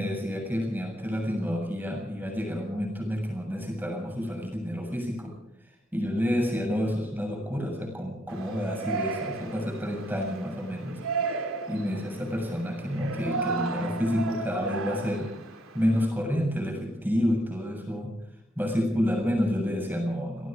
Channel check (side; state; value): both; normal; correlation 0.75